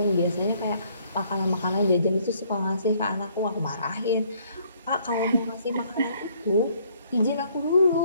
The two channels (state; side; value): inverted; both; correlation -0.64